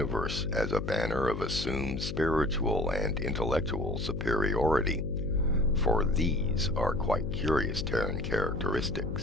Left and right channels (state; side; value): noise; left; hum, 5 dB below the sound